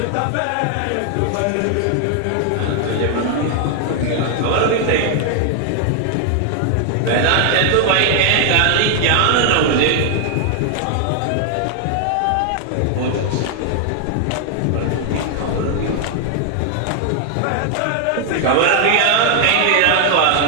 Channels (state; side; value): different; both; correlation 0.00